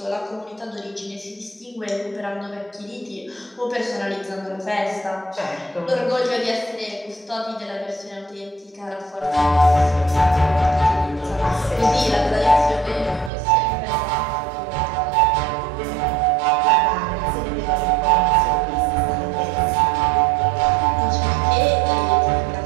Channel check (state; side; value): drops out; left; at 13.3 s